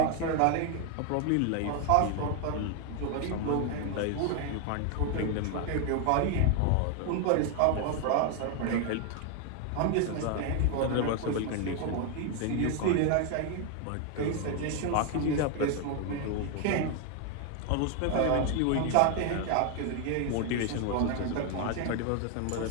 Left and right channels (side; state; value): both; different; correlation 0.01